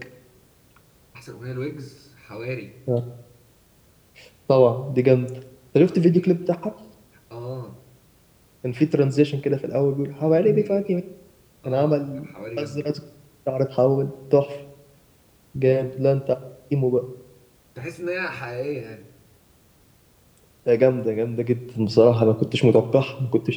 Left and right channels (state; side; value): identical; both; correlation 1.00